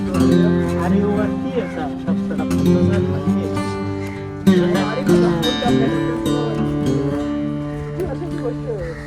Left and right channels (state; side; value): identical; both; correlation 1.00